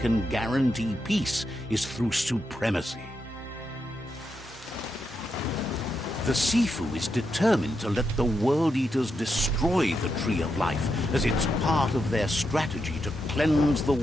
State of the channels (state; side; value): normal; both; correlation 0.84